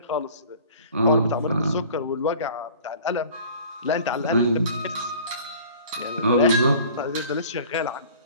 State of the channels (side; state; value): both; inverted; correlation -0.47